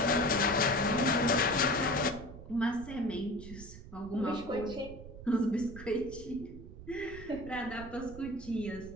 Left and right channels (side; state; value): right; noise; rumble, 14 dB below the sound